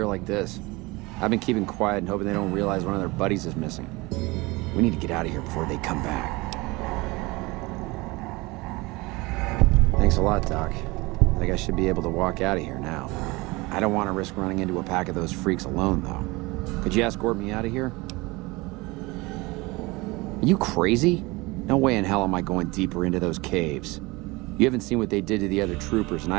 like this. I've been keeping quiet and hoping they don't realize one of their buddies is missing. We need to get out of here before they come back. Thanks a lot, Doc. I think I should be able to walk out of here now. I don't want to risk running into a pack of those freaks alone, though. Could you escort me out of here? Are you crazy? No way in hell am I going deeper into those caves. You haven't seen what they did to the other troopers, and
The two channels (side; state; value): left; quieter; 23.3 dB